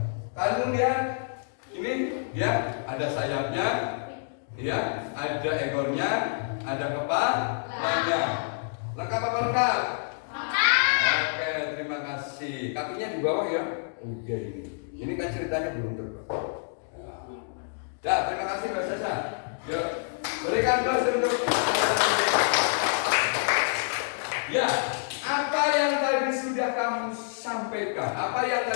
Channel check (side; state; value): right; silent; digital silence